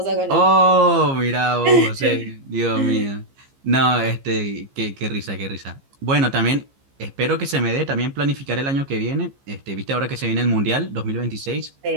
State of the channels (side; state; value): left; late; 15 ms